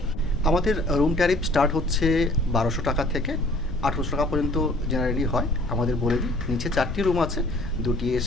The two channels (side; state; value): left; noise; rumble, 9 dB below the sound